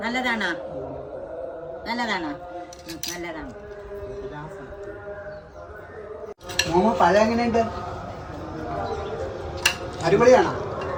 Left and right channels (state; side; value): identical; both; correlation 1.00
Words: നല്ലതാണോ? നല്ലതാണോ? നല്ലതാണ്. മോമോ പഴം എങ്ങനെയുണ്ട്? അടിപൊളിയാണോ?